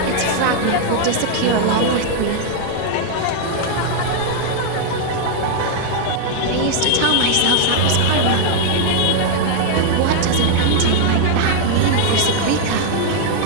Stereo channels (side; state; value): both; different; correlation 0.00